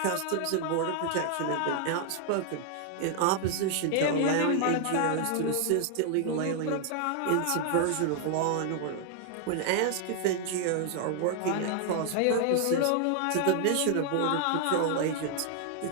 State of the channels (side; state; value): both; different; correlation 0.00